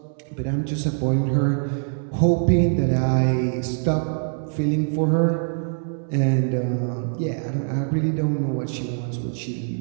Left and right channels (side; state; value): left; silent; digital silence